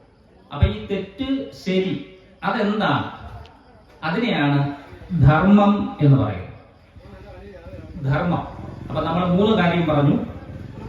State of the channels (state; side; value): identical; both; correlation 1.00